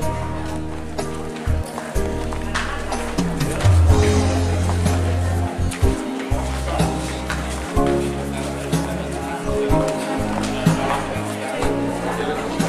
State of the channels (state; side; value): identical; both; correlation 1.00